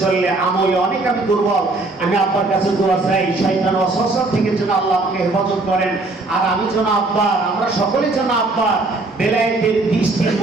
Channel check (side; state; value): left; quieter; 3.2 dB